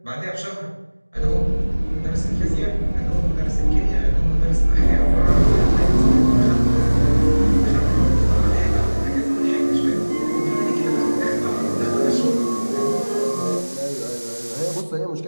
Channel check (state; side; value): inverted; both; correlation -1.00